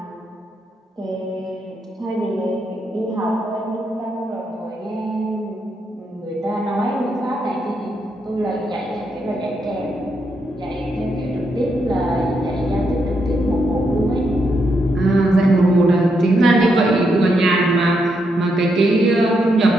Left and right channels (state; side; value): normal; both; correlation 0.80